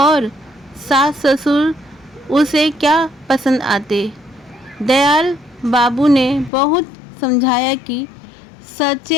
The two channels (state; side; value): drops out; right; at 6.5 s